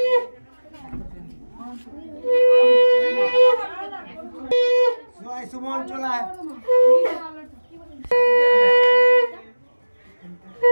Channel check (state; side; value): inverted; both; correlation -1.00